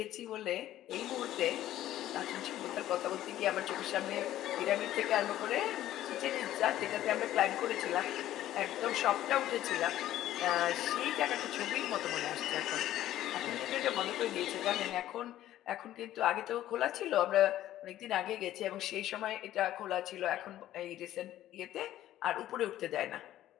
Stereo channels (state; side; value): quieter; right; 13.3 dB